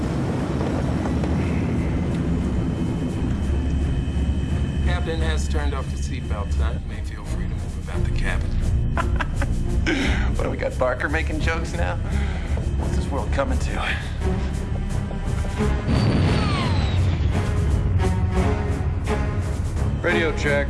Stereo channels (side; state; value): both; identical; correlation 1.00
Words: Captain has turned off the seatbelt sign. May feel free to move about the cabin. What do we got, Barker making jokes now? What's this world coming to? Radio check.